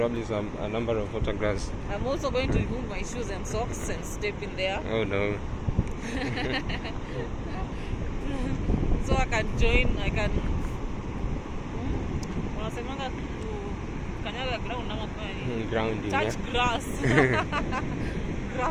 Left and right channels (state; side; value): identical; both; correlation 1.00